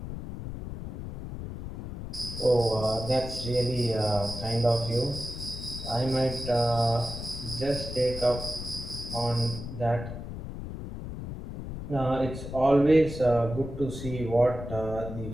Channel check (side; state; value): left; noise; rumble, 8 dB below the sound